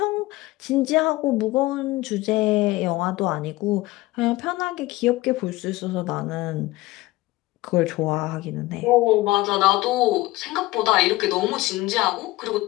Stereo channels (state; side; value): quieter; right; 19.2 dB